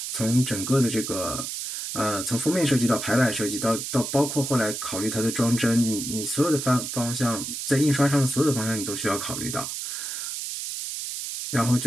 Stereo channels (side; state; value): right; noise; hiss, 5 dB below the sound